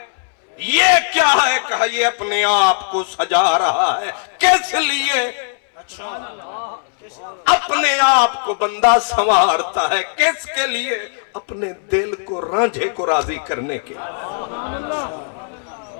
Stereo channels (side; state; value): right; silent; 65 dB below the other